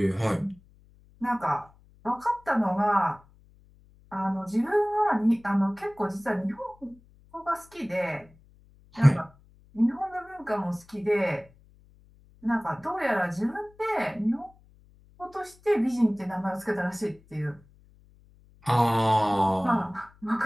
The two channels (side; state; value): left; noise; hum, 28 dB below the sound